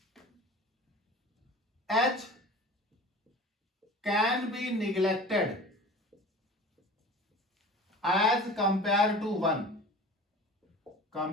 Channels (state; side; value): normal; both; correlation 0.39